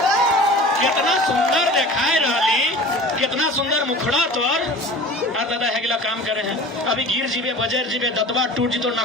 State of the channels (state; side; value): normal; both; correlation 0.40